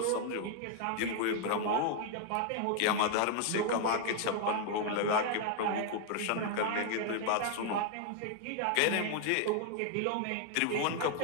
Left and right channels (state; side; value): different; both; correlation 0.00